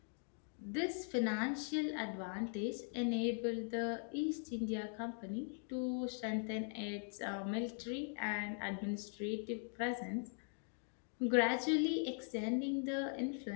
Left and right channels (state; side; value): silent; right; 50 dB below the other